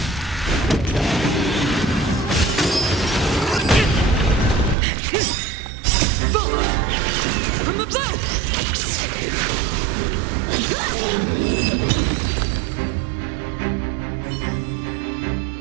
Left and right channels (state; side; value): drops out; left; at 4.8 s